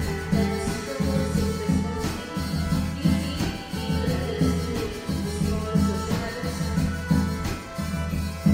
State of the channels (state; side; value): identical; both; correlation 1.00